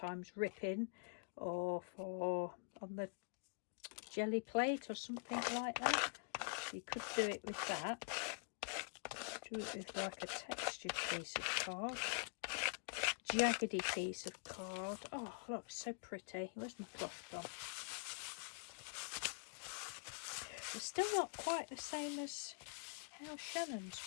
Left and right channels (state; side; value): quieter; right; 38.9 dB